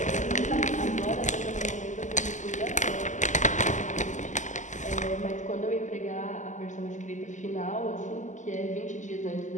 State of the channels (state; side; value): late; right; 0.36 ms